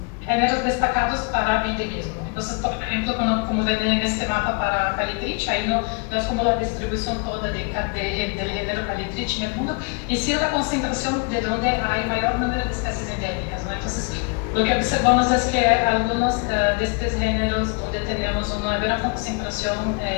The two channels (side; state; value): right; quieter; 34.3 dB